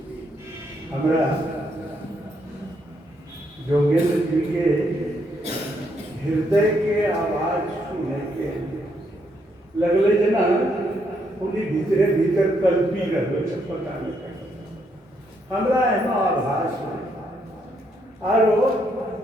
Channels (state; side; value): normal; both; correlation 0.75